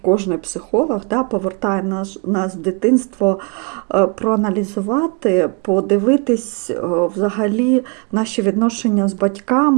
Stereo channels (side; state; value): left; quieter; 32.2 dB